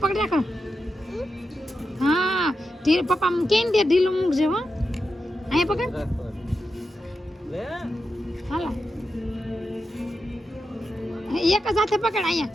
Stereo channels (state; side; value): normal; both; correlation 0.89